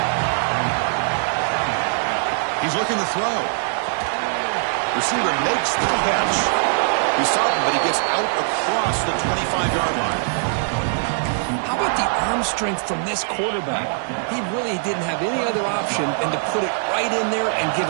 He's looking to throw. Receiver makes the catch. He saw him, but he gets out across the 25-yard line. How about the arm strength from this quarterback? He really didn't have any other option than to put it right in there and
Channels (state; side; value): silent; left; digital silence